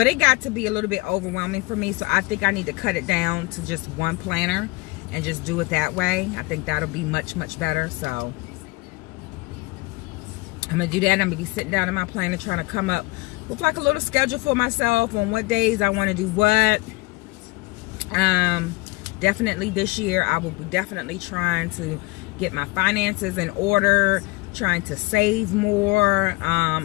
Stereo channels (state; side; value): quieter; right; 24.4 dB